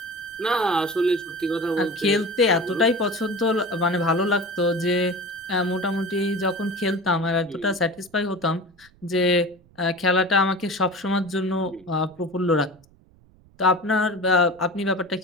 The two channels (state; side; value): noise; right; rumble, 29 dB below the sound